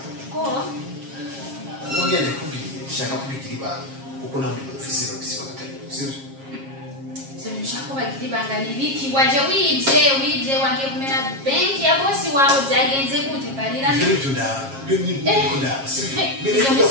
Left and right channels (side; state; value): left; late; 7.4 ms